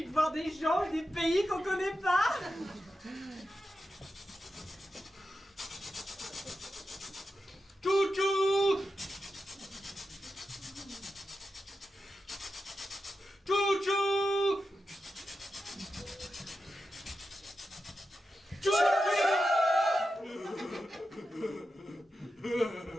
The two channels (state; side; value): normal; both; correlation 0.90